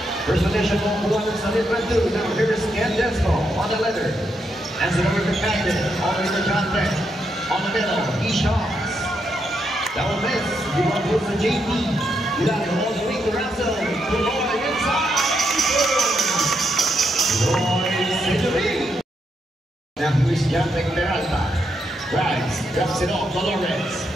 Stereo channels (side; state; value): both; normal; correlation 0.80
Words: First position on the one Sunday Brendu. Now here's Candesco on the leather. Hands it over to Captain. All the way to John Beck. On the middle, he shots. That will miss. We want to to JP. You got it all the way to Russell. To Lloyd inside. Lloyd Century. Now here's John Beck Peralta. Drives, drops it off to Lawrence.